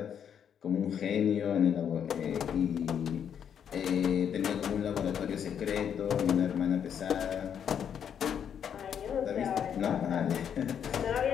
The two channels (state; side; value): quieter; right; 8.3 dB